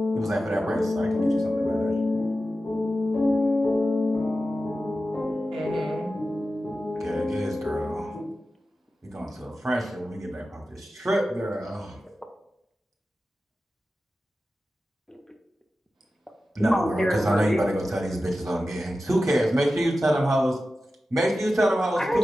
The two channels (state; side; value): normal; both; correlation 0.93